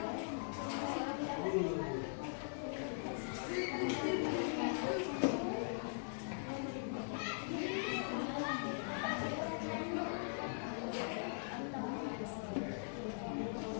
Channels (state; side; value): silent; right; 50 dB below the other